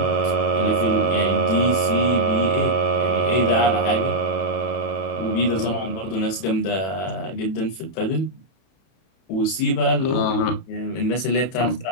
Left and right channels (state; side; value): late; right; 31 ms